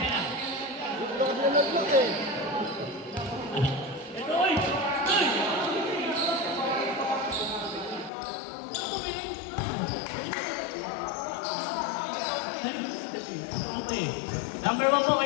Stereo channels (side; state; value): right; drops out; at 8.1 s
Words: na. Ito, oy! Oy! Okay. Number 1 po